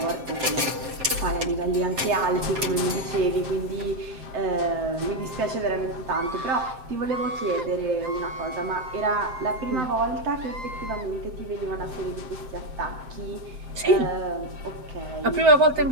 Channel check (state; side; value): late; left; 7.6 ms